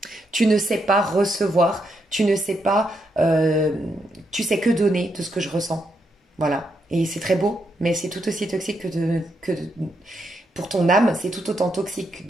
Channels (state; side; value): normal; both; correlation 0.80